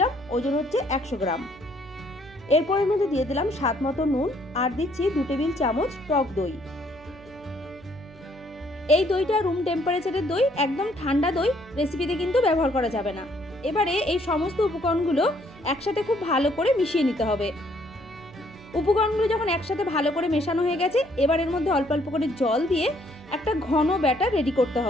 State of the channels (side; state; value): right; noise; hum, 23 dB below the sound